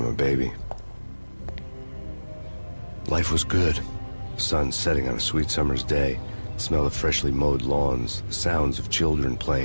a baby. Life was good. Sun setting on a sweet summer's day. The smell of freshly mowed lawns. The sounds of children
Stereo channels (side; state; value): both; inverted; correlation -1.00